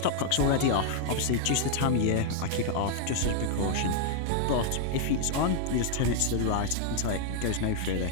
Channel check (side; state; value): both; different; correlation 0.00